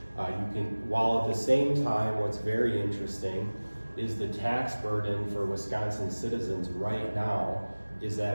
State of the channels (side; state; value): both; inverted; correlation -1.00